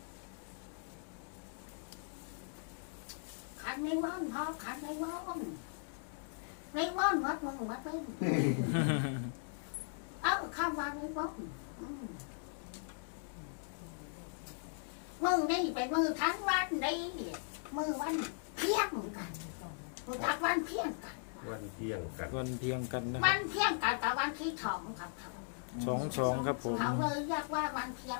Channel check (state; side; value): silent; right; digital silence